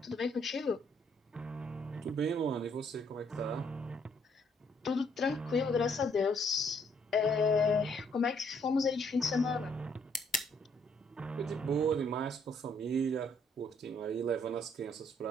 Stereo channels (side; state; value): both; normal; correlation 0.68